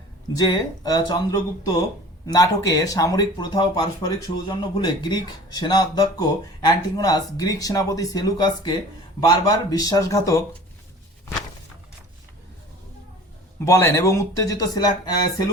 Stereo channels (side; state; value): both; normal; correlation 0.43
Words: যে চন্দ্রগুপ্ত নাটকে সামরিক প্রথা ও পারস্পরিক সৌজন্য ভুলে গ্রিক সেনা অধ্যক্ষ অ্যান্টিগোনাস গ্রিক সেনাপতি সেলুকাসকে বারবার বিশ্বাসঘাতক বলেন এবং উত্তেজিত